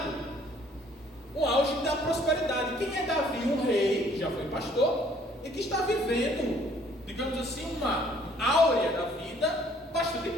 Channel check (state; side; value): normal; both; correlation 0.60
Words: o auge da prosperidade. Quem é Davi? Um rei, já foi pastor, e que está vivendo, digamos assim, uma áurea da vida bastante